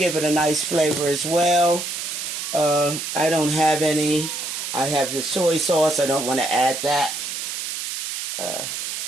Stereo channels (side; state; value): right; noise; hiss, 5 dB below the sound